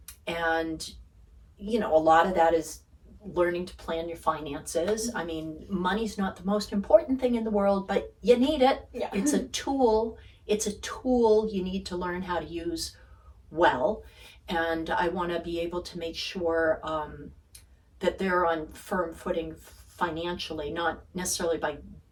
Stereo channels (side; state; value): both; identical; correlation 1.00